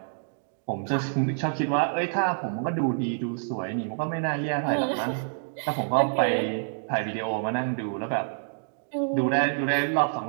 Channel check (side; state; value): left; silent; digital silence